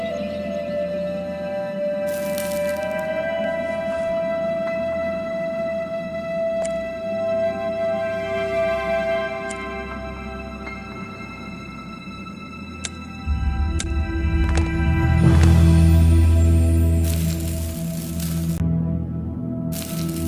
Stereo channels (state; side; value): identical; both; correlation 1.00